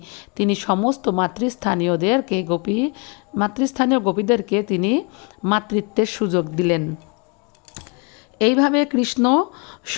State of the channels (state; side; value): quieter; right; 32.7 dB